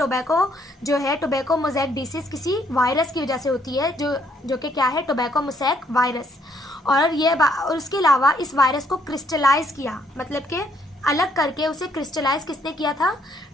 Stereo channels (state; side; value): normal; both; correlation 0.69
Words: जो है, टोबैको मोज़ेक डिसीज़ किसी वायरस की वजह से होती है, जो कि क्या है, टोबैको मोज़ेक वायरस। और उसके अलावा इस वायरस को क्रिस्टलाइज किया, मतलब कि अलग करके उसे क्रिस्टलाइज किसने किया था,